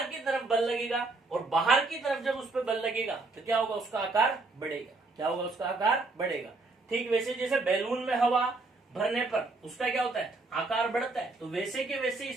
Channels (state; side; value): quieter; left; 3.4 dB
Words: की तरफ बल लगेगा, और बाहर की तरफ जब उस पर बल लगेगा तो क्या होगा, उसका आकार बढ़ेगा। क्या होगा, उसका आकार बढ़ेगा। ठीक वैसे जैसे बैलून में हवा भरने पर उसका क्या होता है, आकार बढ़ता है, तो वैसे के वैसे